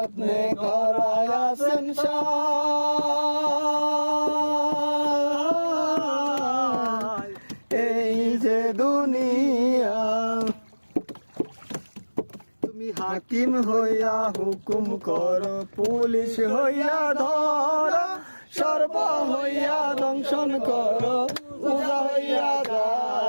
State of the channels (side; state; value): both; inverted; correlation -1.00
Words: করায় আছেন সাই। এই যে দুনিয়া তুমি হাকিম হইয়া হুকুম করো, পুলিশ হইয়া ধরো, সর্ব হইয়া দংশন করো, পূজা হইয়া